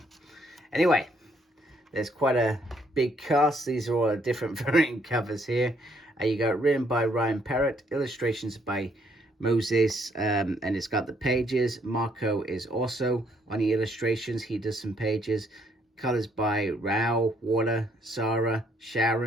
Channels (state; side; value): normal; both; correlation 0.69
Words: Anyway. There's quite a big cast. These are all different variant covers here. You got written by Parrot, illustrations by Moses, and it's got the pages. Marco is also on the illustrations. He does some pages. Colors by Rao, Water, Sarah,